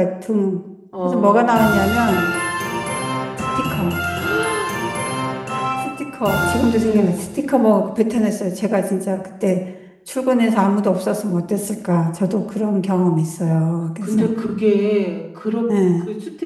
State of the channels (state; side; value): identical; both; correlation 1.00